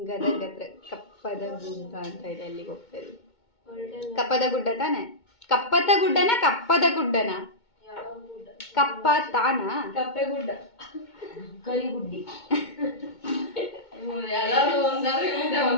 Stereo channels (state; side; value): late; right; 2.2 ms